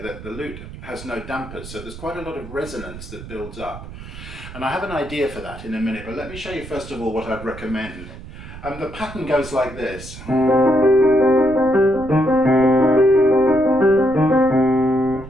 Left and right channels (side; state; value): right; noise; rumble, 14 dB below the sound